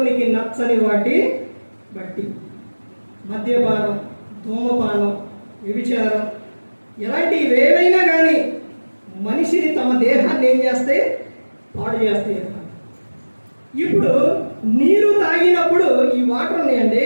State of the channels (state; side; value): inverted; both; correlation -1.00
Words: నచ్చని వాటి బట్టి మద్యపానం, ధూమపానం, వ్యభిచారం ఇలాంటివి ఏవైనా కానీ మనిషిని తమ దేహాన్ని ఏం చేస్తాయి? పాడు చేస్తాయి. ఇప్పుడు నీరు తాగినప్పుడు ఈ వాటర్ ఉన్నాయండి,